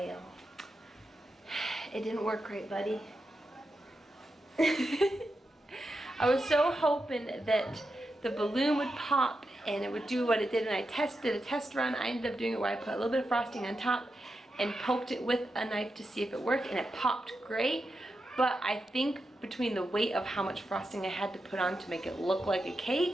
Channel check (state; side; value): normal; both; correlation 0.88